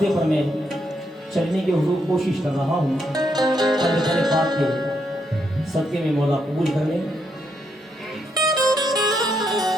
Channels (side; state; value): both; normal; correlation 0.78